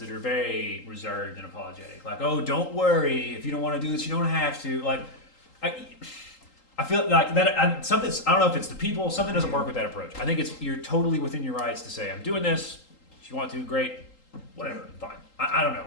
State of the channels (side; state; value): right; late; 3.8 ms